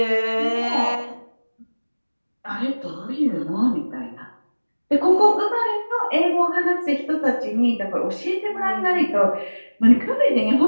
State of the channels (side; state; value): both; inverted; correlation -1.00